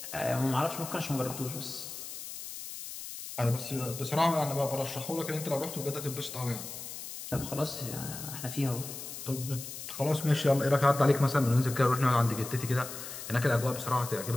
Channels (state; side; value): noise; left; hiss, 10 dB below the sound